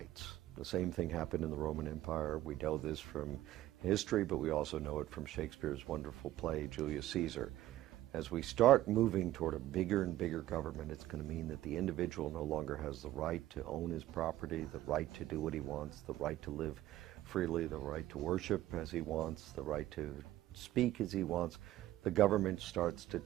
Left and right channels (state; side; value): quieter; left; 14.7 dB